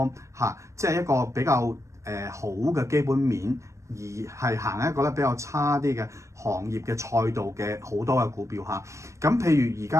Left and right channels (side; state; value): left; late; 0.15 ms